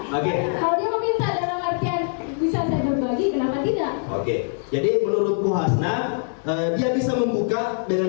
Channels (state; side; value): silent; right; 63 dB below the other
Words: Oke. Kalau dia meminta dalam artian bisa saya berbagi, kenapa tidak? Oke, jadi menurut Bu Hasna, dia bisa membuka dengan